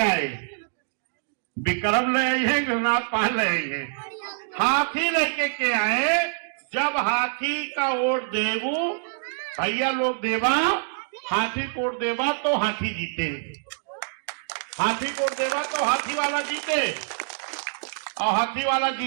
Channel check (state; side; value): silent; left; digital silence